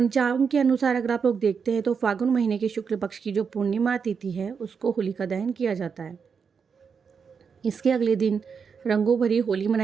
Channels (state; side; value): quieter; left; 6.1 dB